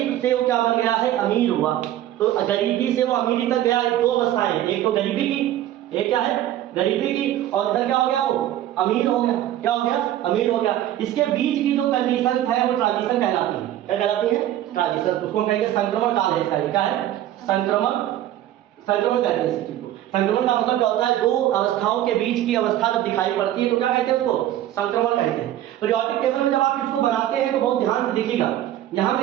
से वो क्या बन गया है? अमीर हुआ। तो गरीबी से वो अमीरी तक गया। दो अवस्थाएं हैं, एक तो गरीबी की, एक क्या है? गरीबी की, और इधर क्या हो गया? वो अमीर हो गया। क्या हो गया? अमीर हो गया। इसके बीच की जो कंडीशन है वो ट्रांजिशन कहलाती है। क्या कहलाती है? ट्रांजिशन। उसको कहेंगे संक्रमण काल है इसका। क्या है? संक्रमण कहते हैं इस चीज को। संक्रमण का मतलब क्या होता है? दो अवस्थाओं के बीच की अवस्था जब दिखाई पड़ती है तो क्या कहते हैं उसको? संक्रमण कहते हैं। पीरियोडिक टेबल में जब आप इसको बनाते हैं तो बहुत ध्यान से देखिएगा। यहाँ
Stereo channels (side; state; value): left; quieter; 12.8 dB